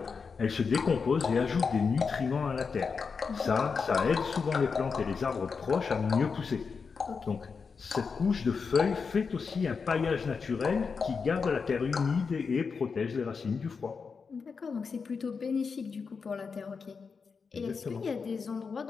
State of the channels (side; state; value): right; quieter; 5.3 dB